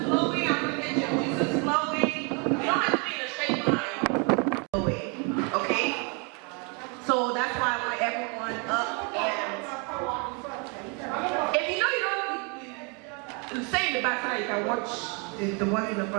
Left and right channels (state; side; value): quieter; left; 33.8 dB